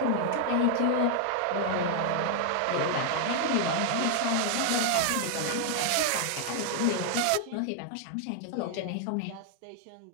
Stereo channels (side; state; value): both; different; correlation 0.00